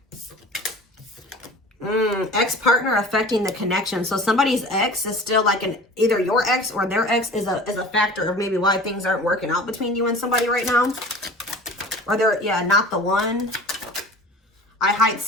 Ex-partner affecting the connection. So somebody's ex is still like either your ex or their ex is a factor of maybe why things aren't working out between you and somebody right now. Or they're, yeah, not the one. I hide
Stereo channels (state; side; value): normal; both; correlation 0.41